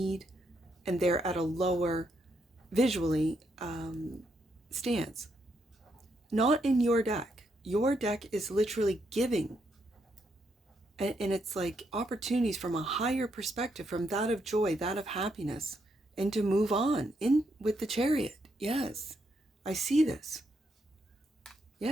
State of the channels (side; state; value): both; normal; correlation 0.78